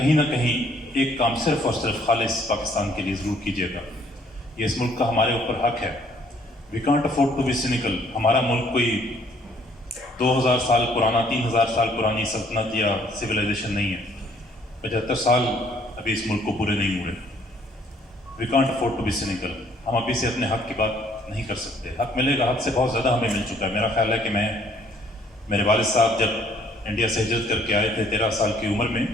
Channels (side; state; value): both; normal; correlation 0.63